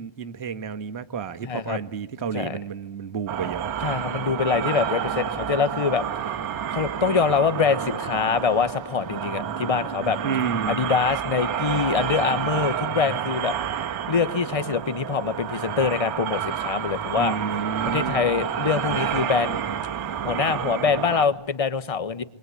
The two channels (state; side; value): late; right; 1.6 ms